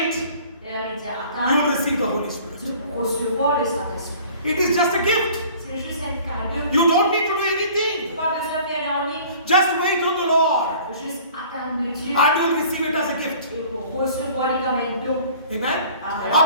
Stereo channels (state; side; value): inverted; both; correlation -0.49